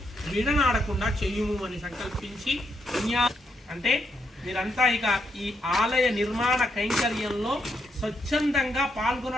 విడనాడకుండా చెయ్యుము అని సంకల్పించి అంటే మీరంతా ఇక ఈ ఆలయ నిర్మాణ కైంకర్యంలో స్వచ్ఛందంగా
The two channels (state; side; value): normal; both; correlation 0.79